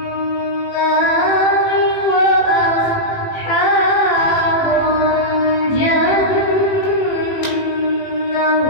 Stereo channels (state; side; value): late; right; 18 ms